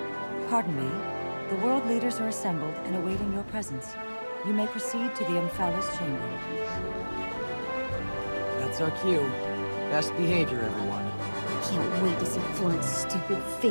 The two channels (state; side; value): inverted; both; correlation -1.00